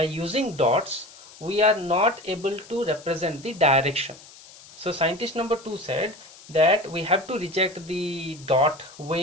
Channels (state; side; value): noise; left; hiss, 21 dB below the sound